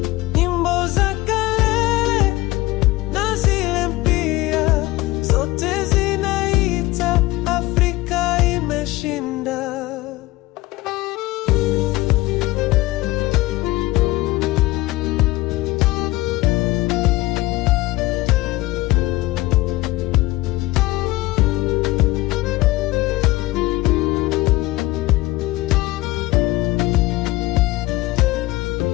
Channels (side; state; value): right; quieter; 19.1 dB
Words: nyimbo za kale na zile mpya, zote zinaita Afrika imeshinda.